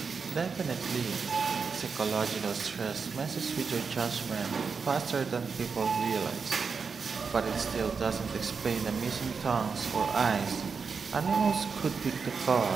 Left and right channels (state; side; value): quieter; left; 5.4 dB